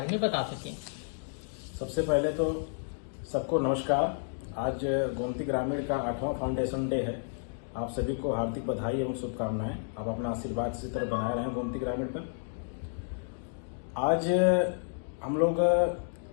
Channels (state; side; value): silent; right; digital silence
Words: में बता सकें। सबसे पहले तो सबको नमस्कार। आज गोमती ग्रामीण का 8वां फाउंडेशन डे है। आप सभी को हार्दिक बधाई एवं शुभकामनाएं। आप अपना आशीर्वाद इसी तरह बनाए रहें गोमती ग्रामीण पर। आज हम लोग